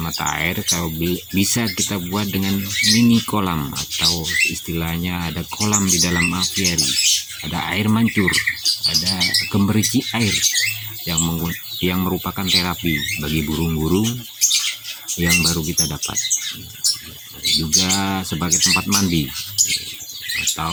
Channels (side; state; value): both; identical; correlation 1.00